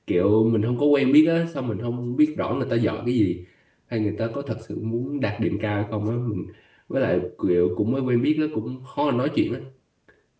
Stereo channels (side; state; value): both; identical; correlation 1.00